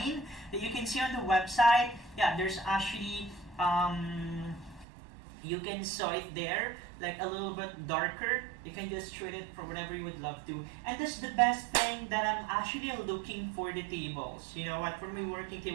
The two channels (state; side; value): drops out; left; at 4.9 s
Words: that you can see on the website. Yeah, there's actually you can saw it there, like a little bit darker. You can just treat it for whatever you would love to. And that's the best thing that I'm actually looking for the tables. You know what, for my working